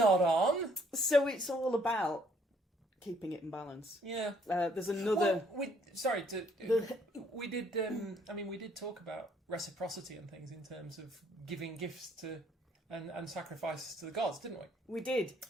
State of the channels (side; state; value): both; normal; correlation 0.65